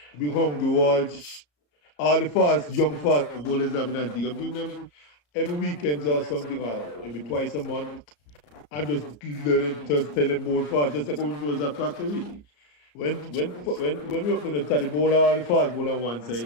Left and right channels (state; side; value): late; right; 34 ms